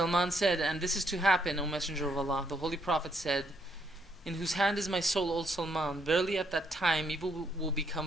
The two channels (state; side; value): normal; both; correlation 0.73